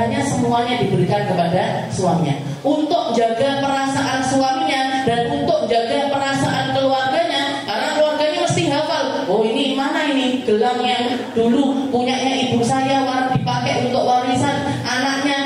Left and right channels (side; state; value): both; identical; correlation 1.00